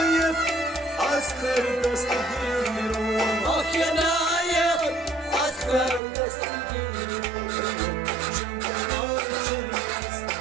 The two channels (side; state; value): left; drops out; at 6.0 s